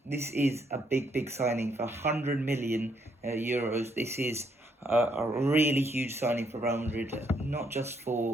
this is a big signing for 100 million euros. This is a really huge signing for Real Madrid, not just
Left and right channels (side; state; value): both; normal; correlation 0.73